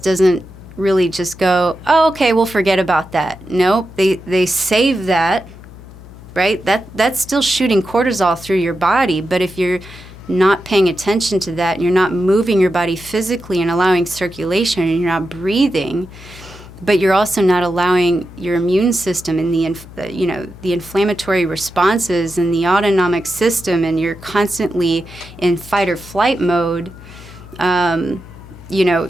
really just go, oh, okay, we'll forget about that. Nope, they save that, right? That's still shooting cortisol through your body. But if you're not paying attention to that, and you're not moving your body physically and allowing circulation, and you're not breathing, but you're also not allowing your immune system and the inflammatory responses and the autonomic system, and you're constantly in fight or flight mode,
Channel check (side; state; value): left; noise; hum, 18 dB below the sound